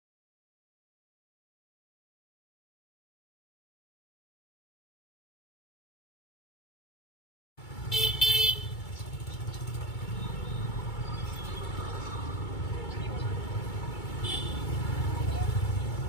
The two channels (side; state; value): right; late; 2.3 ms